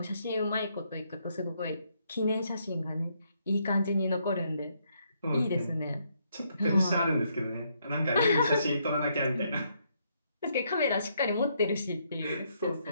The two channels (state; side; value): inverted; both; correlation -0.74